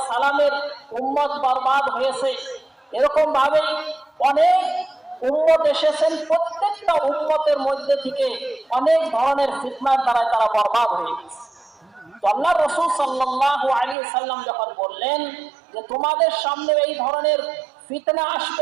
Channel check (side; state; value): left; drops out; at 14.0 s